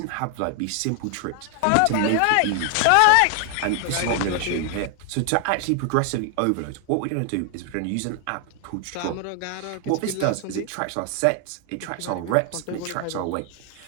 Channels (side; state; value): both; different; correlation 0.00